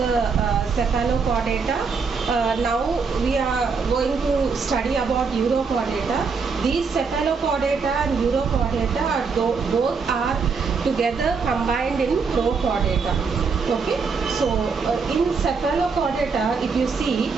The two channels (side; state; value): left; quieter; 5.1 dB